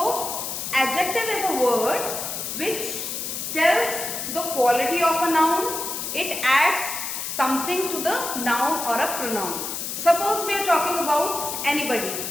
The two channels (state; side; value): noise; left; hiss, 5 dB below the sound